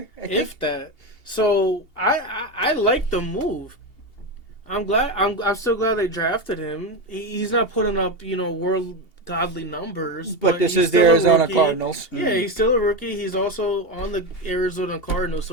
I think? If that. So I like the move. I'm glad. I'm still glad they drafted him. He's not putting up world godly numbers. But this he's is the still a Arizona rookie. Cardinals. Yeah, he's still a rookie. He's also on the Arizona Cardinals,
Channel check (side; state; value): right; late; 2.8 ms